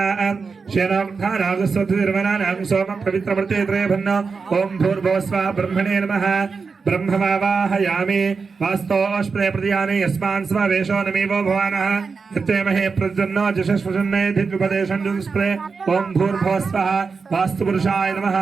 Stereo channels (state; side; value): quieter; left; 4.9 dB